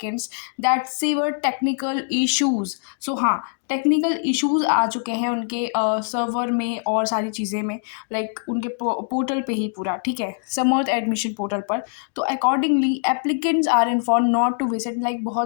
that severe technical issues. So हाँ, टेक्निकल इश्यूज आ चुके हैं उनके सर्वर में और सारी चीज़ें में, लाइक उनके पोर्टल पे ही पूरा, ठीक है, समर्थ एडमिशन पोर्टल पर। तो accordingly applicants are inform not to visit, like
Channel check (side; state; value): right; silent; digital silence